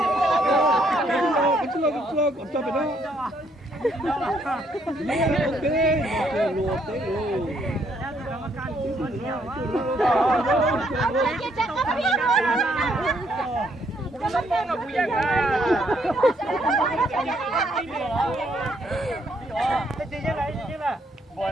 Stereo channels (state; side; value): normal; both; correlation 0.71